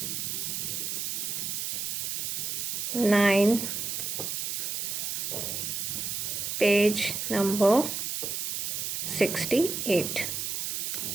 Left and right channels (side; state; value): right; noise; hiss, 2 dB below the sound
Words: 9, page number 68,